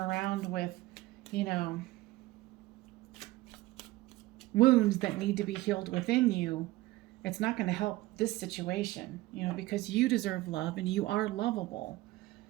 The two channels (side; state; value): left; quieter; 18.5 dB